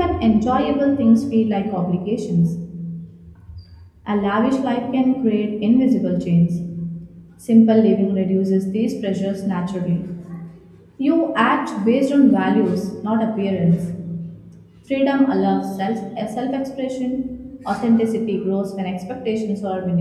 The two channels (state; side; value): identical; both; correlation 1.00